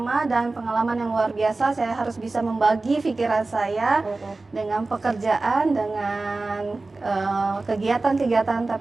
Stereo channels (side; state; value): left; quieter; 3.4 dB